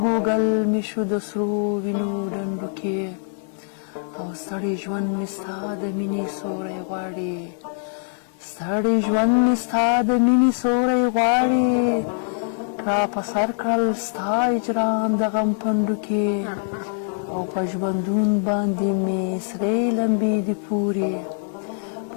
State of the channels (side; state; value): right; silent; 63 dB below the other